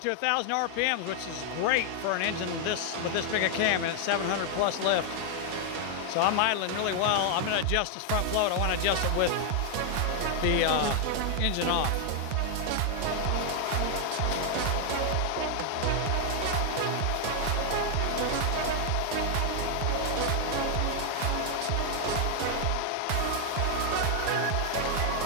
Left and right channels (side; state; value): both; different; correlation 0.00